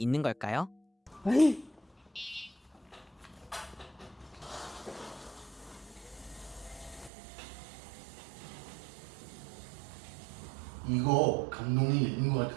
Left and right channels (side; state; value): left; drops out; at 7.1 s